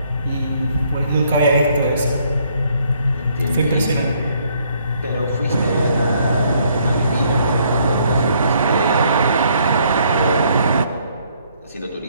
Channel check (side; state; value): both; inverted; correlation -0.67